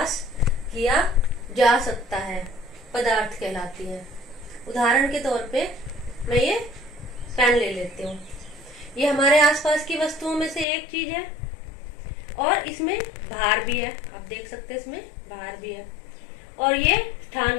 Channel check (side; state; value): right; drops out; at 10.7 s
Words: किया जा सकता है, पदार्थ कहलाती हैं। उदाहरण के तौर पे मैं ये पेन ले लेती हूँ। ये हमारे आसपास की वस्तुओं में से एक चीज है और इसमें भार भी है। आप देख सकते हैं इसमें भार भी है और ये